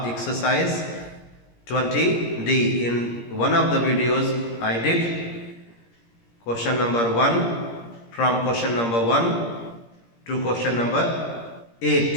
exercise 20D. In one of the videos I did question number 1 from question number 1 to question number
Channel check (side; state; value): right; late; 17 ms